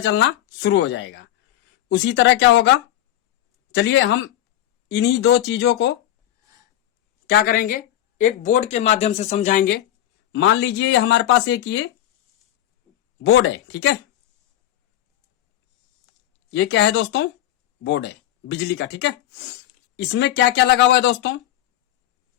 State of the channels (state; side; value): quieter; right; 12.8 dB